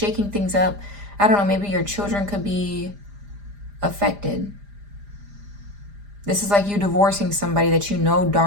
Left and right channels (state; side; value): late; left; 4.9 ms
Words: things up, I don't know, maybe your children could be affected. This is like you divorcing somebody that you know